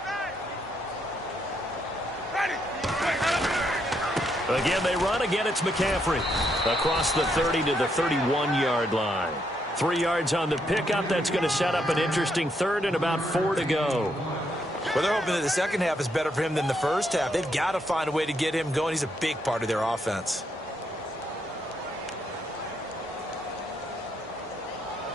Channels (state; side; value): normal; both; correlation 0.76